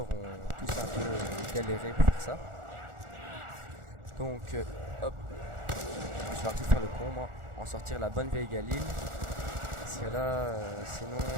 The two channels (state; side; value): late; left; 1.4 ms